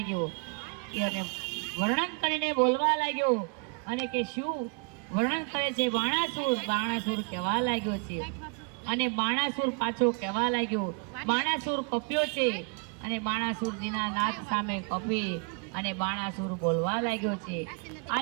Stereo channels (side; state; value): left; quieter; 37.3 dB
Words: અને વર્ણન કરીને બોલવા લાગ્યો અને કે શું વર્ણન કરે છે બાણાસુર. બાણાસુર કહેવા લાગ્યો છે અને બાણાસુર પાછો કહેવા લાગ્યો. બાણાસુર કપ્યો છે અને બાણાસુરજીના નાથ સામે કપી અને બાણાસુર બોલવા લાગ્યો છે,